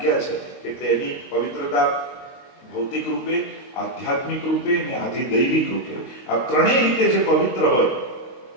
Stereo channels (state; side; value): late; right; 23 ms